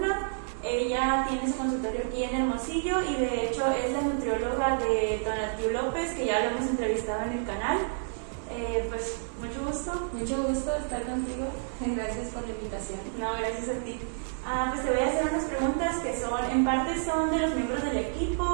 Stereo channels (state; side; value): silent; left; 56 dB below the other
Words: Ella tiene su consultorio aquí en Hermosillo y de hecho es la nutrióloga de Tonatiuh López, que ya lo hemos entrevistado en el canal. Pues mucho gusto. Mucho gusto estar contigo. Gracias por la invitación. No, gracias a ti. Pues te voy a hacer unas preguntas que en parte son de los miembros del